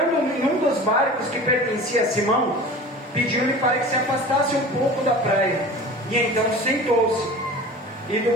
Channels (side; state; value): both; normal; correlation 0.37